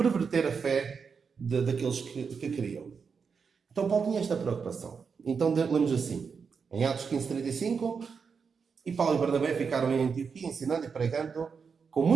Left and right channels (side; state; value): left; quieter; 5.8 dB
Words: a fé daqueles que queriam. Então Paulo tinha esta preocupação. Então lemos assim, em Atos 15:35, e Paulo e Barnabé ficaram em Antioquia ensinando e pregando com